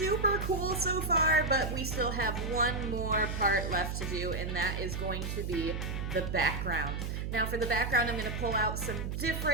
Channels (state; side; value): noise; right; hum, 3 dB below the sound